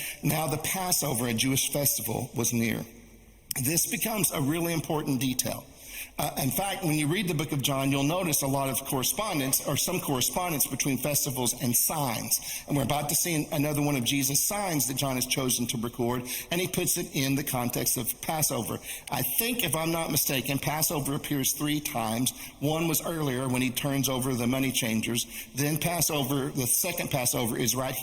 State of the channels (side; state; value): both; identical; correlation 1.00